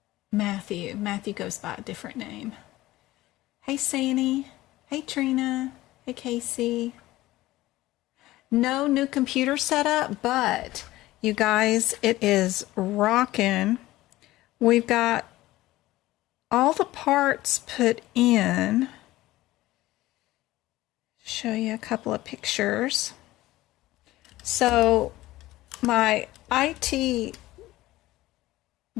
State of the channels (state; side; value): quieter; right; 17.1 dB